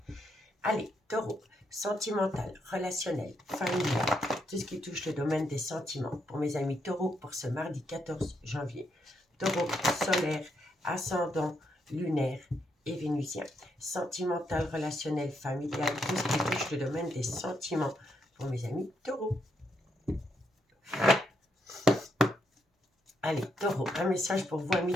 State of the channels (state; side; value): normal; both; correlation 0.78